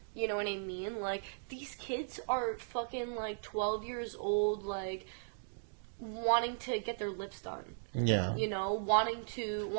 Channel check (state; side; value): silent; left; digital silence